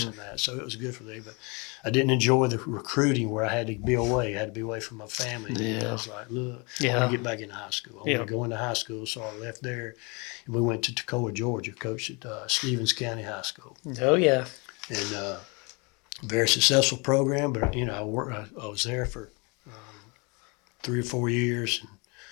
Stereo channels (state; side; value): quieter; right; 30.1 dB